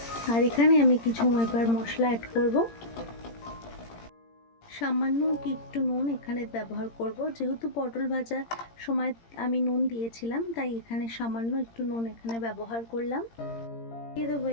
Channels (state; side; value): late; right; 17 ms